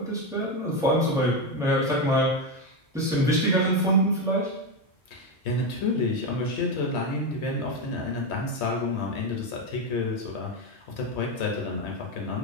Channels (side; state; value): both; normal; correlation 0.11